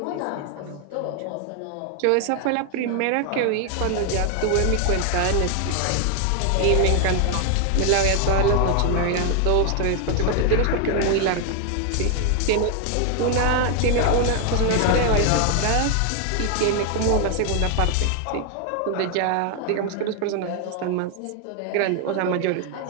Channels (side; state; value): both; different; correlation 0.00